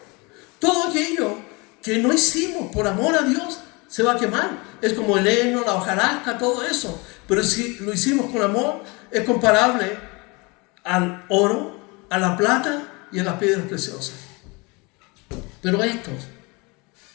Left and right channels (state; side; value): quieter; right; 27.5 dB